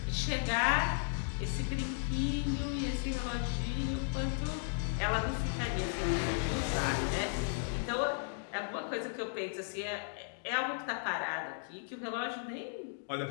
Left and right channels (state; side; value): silent; right; digital silence